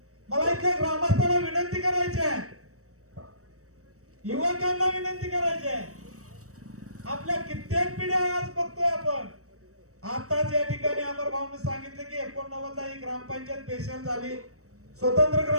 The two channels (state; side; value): late; left; 0.65 ms